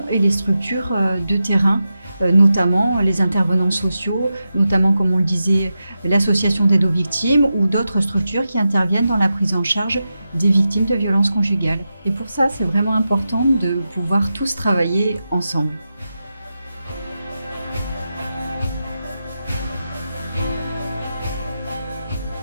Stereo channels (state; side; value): inverted; both; correlation -0.90